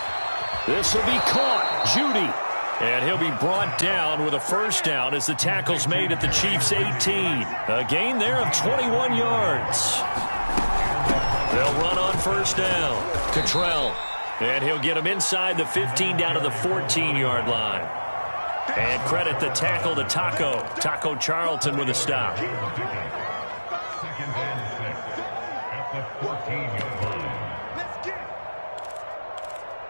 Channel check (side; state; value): both; inverted; correlation -1.00